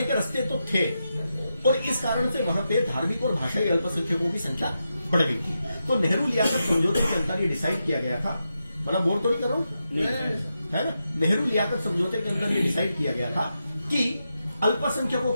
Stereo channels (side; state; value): both; inverted; correlation -0.87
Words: के रास्ते तो थे और इस कारण से वहां पे धार्मिक और भाषाई अल्पसंख्यकों की संख्या बढ़ गई थी। तो नेहरू लियाकत समझौते के अंदर ये डिसाइड किया गया था, मतलब बोल तो नहीं करो, है ना। नेहरू लियाकत समझौते के अंदर ये डिसाइड किया गया था कि अल्पसंख्यकों